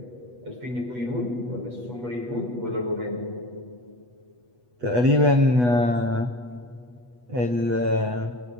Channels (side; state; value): left; late; 8.2 ms